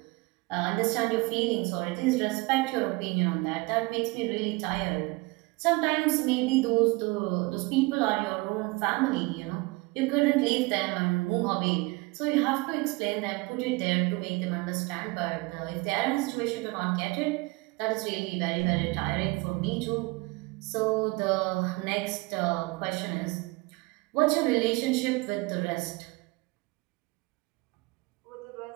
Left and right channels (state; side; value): quieter; left; 24.5 dB